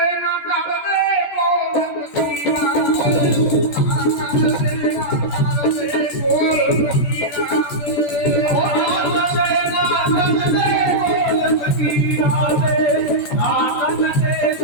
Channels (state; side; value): late; right; 14 ms